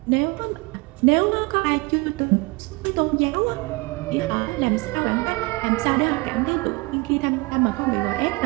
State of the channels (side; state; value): left; quieter; 25.1 dB